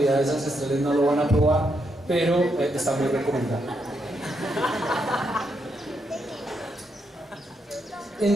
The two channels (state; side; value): normal; both; correlation 0.80